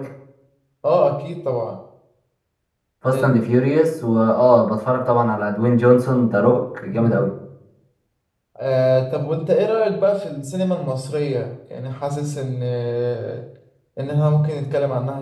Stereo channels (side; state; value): both; identical; correlation 1.00